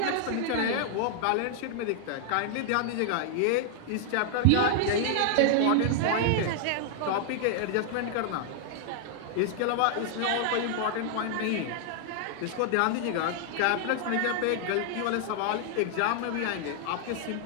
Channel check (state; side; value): different; both; correlation 0.00